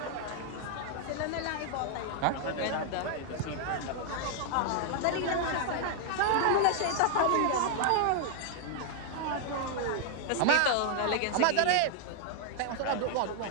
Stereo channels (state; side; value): different; both; correlation 0.00